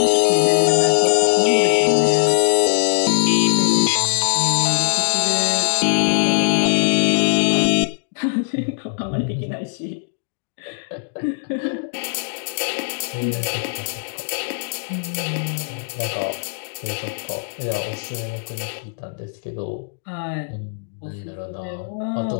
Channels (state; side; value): silent; right; digital silence